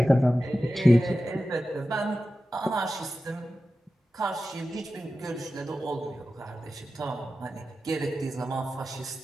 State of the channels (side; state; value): both; normal; correlation 0.93